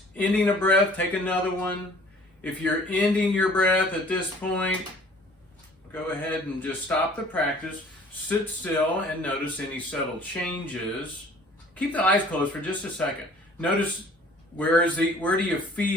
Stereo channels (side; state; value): both; normal; correlation 0.52